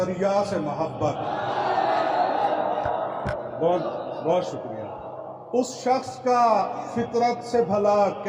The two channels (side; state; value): both; identical; correlation 1.00